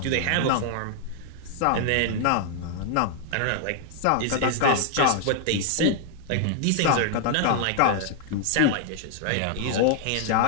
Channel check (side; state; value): both; different; correlation 0.00